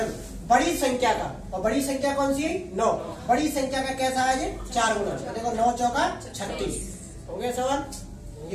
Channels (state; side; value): identical; both; correlation 1.00